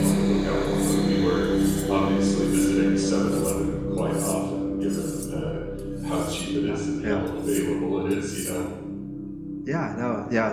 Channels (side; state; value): both; identical; correlation 1.00